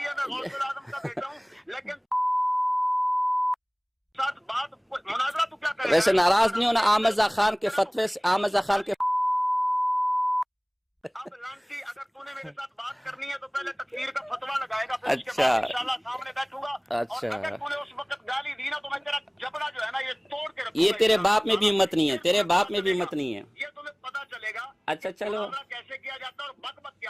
ہے میں غوث العظم کا بیٹا ہوں لیکن ساتھ بات مناظرہ تو کیا کرے. ویسے ناراض نہیں ہونا آمزہ خان کے فتوے سے. آمزہ خان کے اب لانسی اگر تو نے میرے ساتھ بات کرنی ہے تو پہلے تکفیر کا فتویٰ لگائے گا, پھر اس کے بعد انشاءاللہ سامنے بیٹھوں گا. اور اگر تو نے اس وقت گالی دی نا تو میں تیرا جبڑا جو ہے نا یہ توڑ کے رکھوں گا. یہ تیرے باپ میں بھی ہمت نہیں ہے, تیرے باپ میں بھی ہمت نہیں ہے. یہ تمہیں پتا چلے گا اچھا چلو کیسے کیا جاتا ہے اور بک بک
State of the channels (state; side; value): identical; both; correlation 1.00